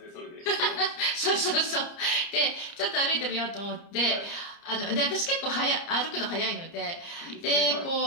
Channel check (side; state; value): right; late; 30 ms